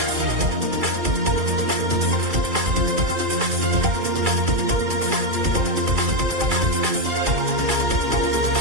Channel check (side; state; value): left; late; 2.3 ms